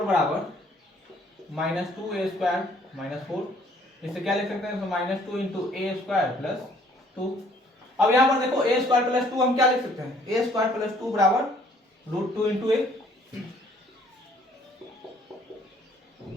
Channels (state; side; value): normal; both; correlation 0.60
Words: बराबर माइनस 2a² माइनस 4, इससे क्या लिख सकते हैं, माइनस 2 इंटू a² प्लस 2। अब यहाँ पर देखो a² प्लस 2 हम क्या लिख सकते हैं, a² प्लस 2 बराबर √2 इंटू a,